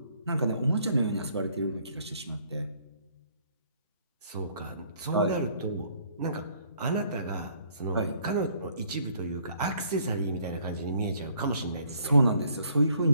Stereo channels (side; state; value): both; inverted; correlation -0.63